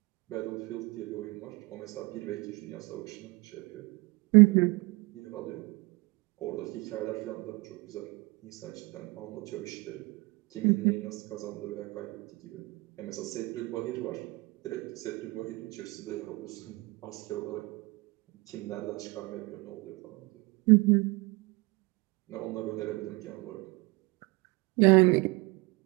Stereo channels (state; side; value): quieter; left; 24.4 dB